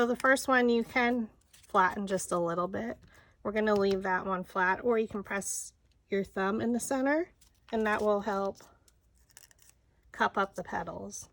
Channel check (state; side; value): identical; both; correlation 1.00